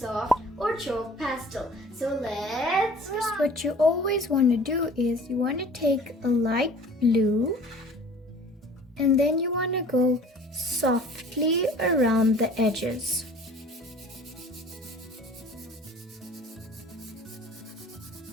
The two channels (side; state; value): both; normal; correlation 0.47